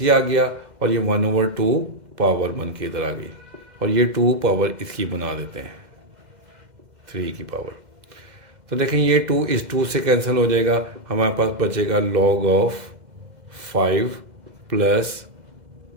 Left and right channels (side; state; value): left; late; 2.0 ms